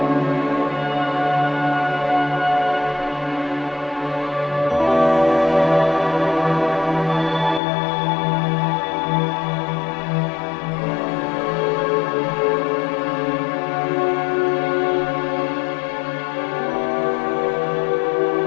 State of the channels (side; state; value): right; drops out; at 7.6 s